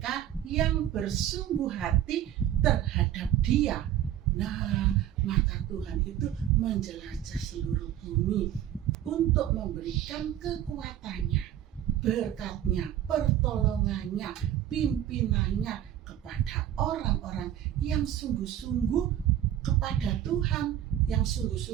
yang bersungguh hati terhadap Dia. Nah, mata Tuhan itu menjelajah seluruh bumi untuk memberikan kekuatannya, berkatnya, pertolongannya, pimpinannya kepada orang-orang yang sungguh-sungguh kepada Tuhan, yang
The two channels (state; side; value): quieter; left; 11.5 dB